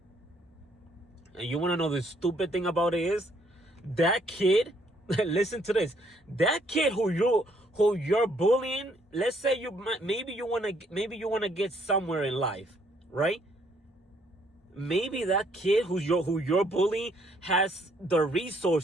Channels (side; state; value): both; normal; correlation 0.67